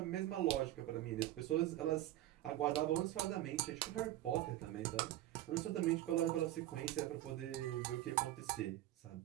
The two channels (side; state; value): left; quieter; 14.6 dB